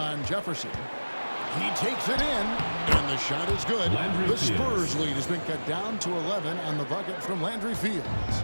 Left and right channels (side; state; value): both; inverted; correlation -1.00